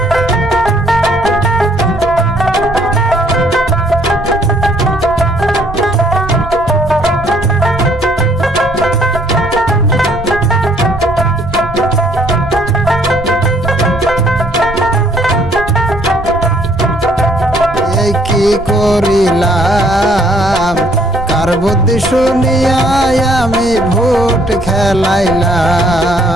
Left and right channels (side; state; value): right; noise; rumble, 12 dB below the sound